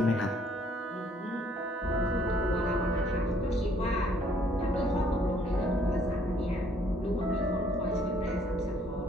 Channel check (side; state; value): both; normal; correlation 0.63